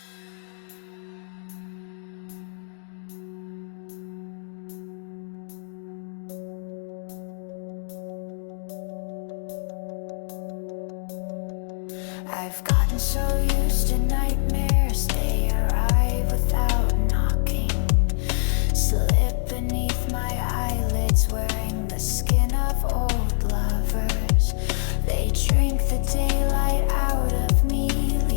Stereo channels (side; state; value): right; silent; digital silence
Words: I've gotten so used to nightmares, they arrive without knocking. Slip beneath my eyelids, wearing the skin of old lovers. They drink the daylight out of me,